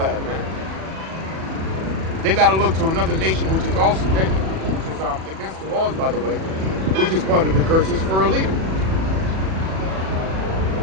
man. They got to look to another nation, which is also which is against the laws, by the way, which is part of the curses for a leader.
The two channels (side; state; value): left; late; 37 ms